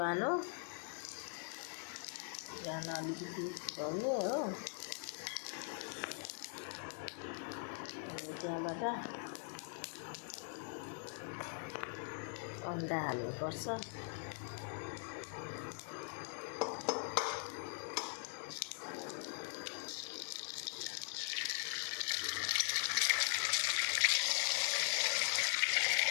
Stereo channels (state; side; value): silent; right; 50 dB below the other